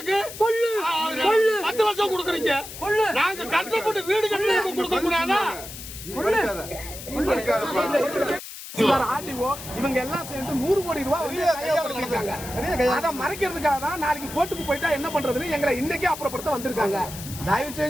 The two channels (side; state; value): left; noise; hiss, 12 dB below the sound